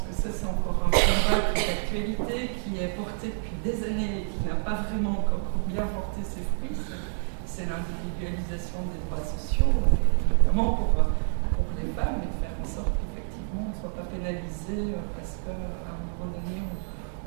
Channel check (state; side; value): silent; left; digital silence